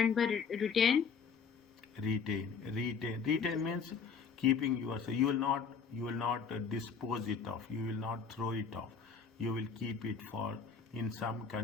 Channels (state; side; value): quieter; right; 5.9 dB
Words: by retain. Retain means keeping yourself. You will not dispose it off. You will not throw it off. You will keep it for. In some